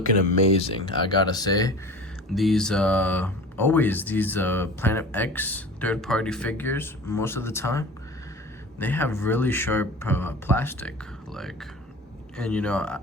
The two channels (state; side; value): normal; both; correlation 0.38